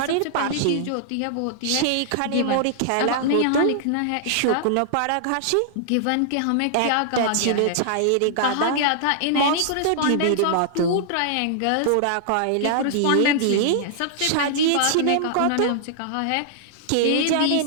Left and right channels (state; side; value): different; both; correlation -0.01